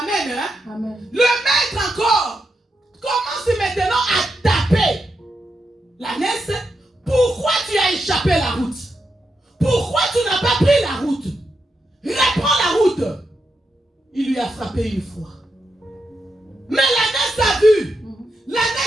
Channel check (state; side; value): normal; both; correlation 0.85